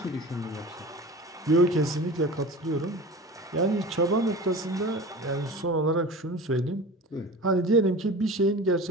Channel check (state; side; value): normal; both; correlation 0.35